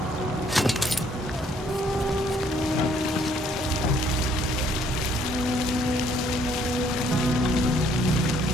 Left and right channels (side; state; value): both; normal; correlation 0.64